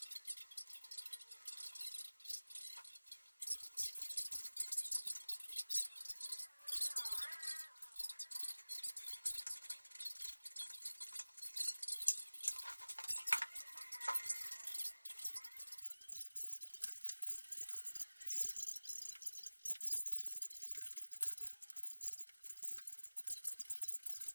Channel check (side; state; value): both; inverted; correlation -1.00